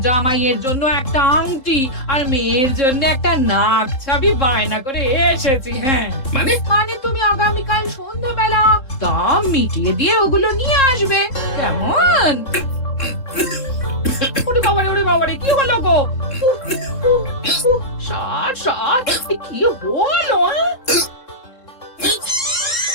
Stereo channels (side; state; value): right; late; 3.7 ms